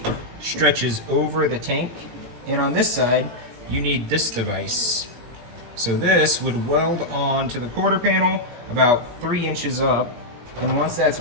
stretches over the tank, and on this side, you need this device. So this would weld on to the quarter panel about 3 inches up, and once that's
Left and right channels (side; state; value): left; late; 18 ms